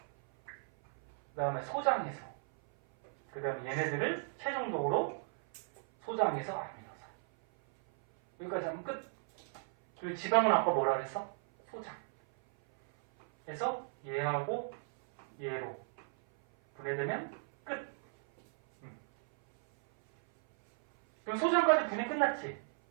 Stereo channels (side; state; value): left; silent; 54 dB below the other